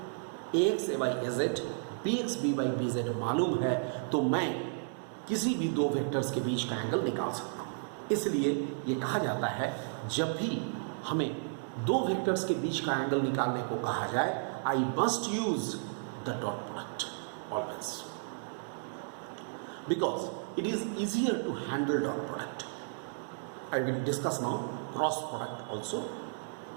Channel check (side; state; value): left; silent; digital silence